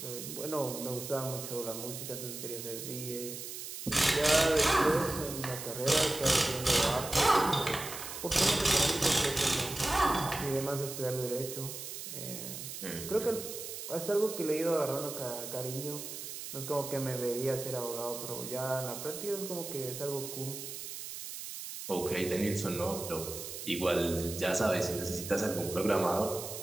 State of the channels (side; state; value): right; noise; hiss, 8 dB below the sound